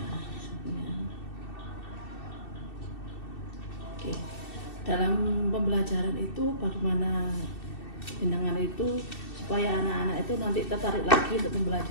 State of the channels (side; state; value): right; late; 2.6 ms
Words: Oke. Dalam pembelajaran itu bagaimana jenengan itu supaya anak-anak itu nanti tertarik lagi untuk